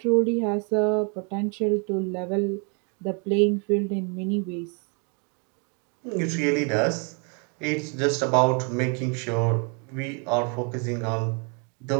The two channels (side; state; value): left; quieter; 37.0 dB